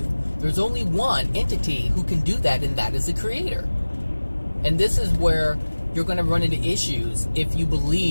There's only one entity who can do that, and that is the Creator. And this is where you're going to run into issues if you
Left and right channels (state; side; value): inverted; both; correlation -1.00